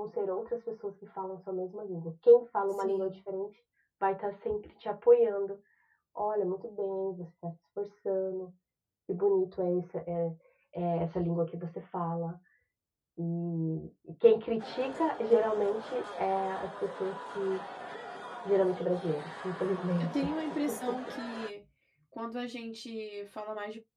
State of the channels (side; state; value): both; identical; correlation 1.00